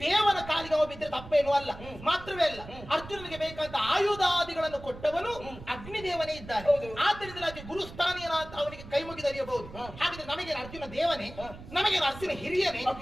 ದೇವನ ಕಾಲಿಗೆ ಅವ ಬಿದ್ದರೆ ತಪ್ಪೇನು ಅಲ್ಲ. ಮಾತ್ರವೇ ಅಲ್ಲ, ಅರ್ಜುನನಿಗೆ ಬೇಕಾದ ಆಯುಧಾದಿಗಳನ್ನು ಕೊಟ್ಟವನು ಅಗ್ನಿದೇವನೇ ಇದ್ದಾನೆ. ಹೌದು. ಆದ್ದರಿಂದಲಾಗಿ ಗುರುಸ್ಥಾನೀಯನಾದ ಅವನಿಗೆ ಕೈ ಮುಗಿದರಿಯಬಹುದು. ಹಾ. ಹಾಗಿದ್ರೆ ನಮಗೆ ಅರ್ಜುನ ದೇವನೇ, ಹಾ. ನಮಗೆ ಅರ್ಜುನ ಹಿರಿಯನೇ,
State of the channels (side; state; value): right; noise; rumble, 15 dB below the sound